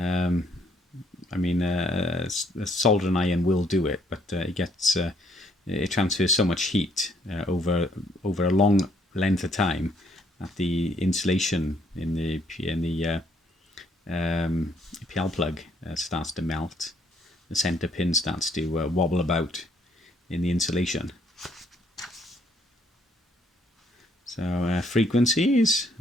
I mean, a soldering iron will do it, but it transfers so much heat over a long length of time that the insulation in the PL plug starts to melt. The center pin starts to wobble about in the insulation. So frequencies,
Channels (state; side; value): normal; both; correlation 0.67